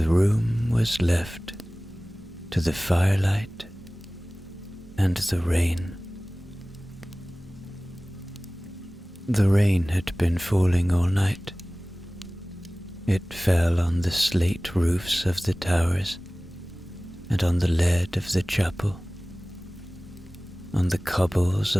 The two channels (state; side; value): normal; both; correlation 0.98